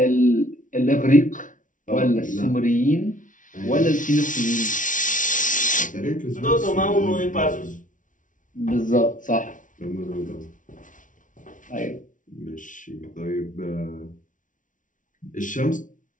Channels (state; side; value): late; right; 0.38 ms